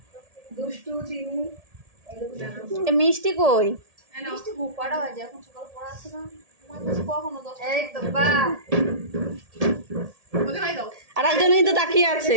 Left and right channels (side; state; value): left; late; 1.7 ms